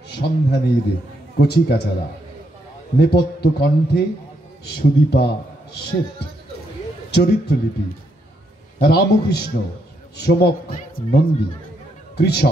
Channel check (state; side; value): normal; both; correlation 0.77